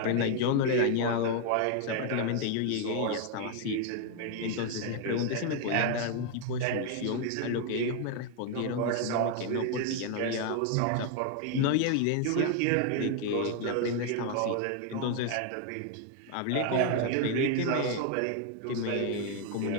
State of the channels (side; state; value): both; different; correlation 0.00